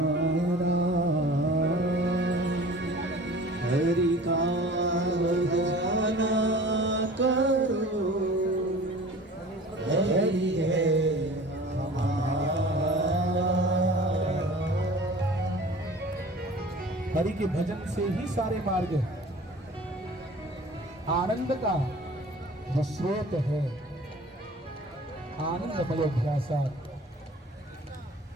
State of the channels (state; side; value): normal; both; correlation 0.43